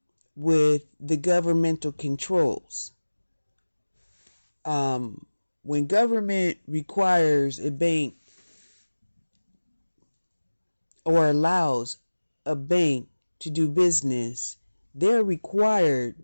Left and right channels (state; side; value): inverted; both; correlation -1.00